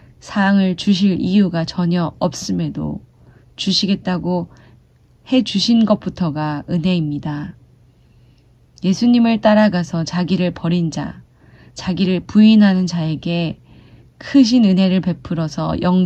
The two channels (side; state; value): both; identical; correlation 1.00